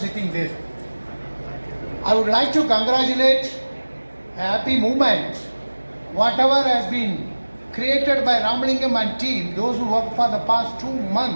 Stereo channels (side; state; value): both; inverted; correlation -1.00